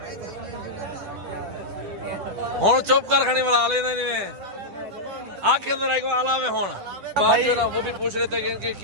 हुण चुप कर खड़ी बना लेना नहीं आखिर अंदर आएगा आला में होना बात जो ना वो भी पूछ रहे थे कि इनकी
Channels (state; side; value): late; left; 10 ms